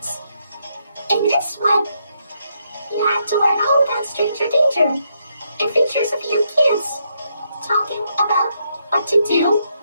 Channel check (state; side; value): inverted; both; correlation -0.77